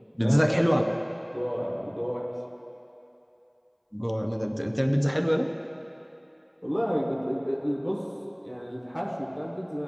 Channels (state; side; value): identical; both; correlation 1.00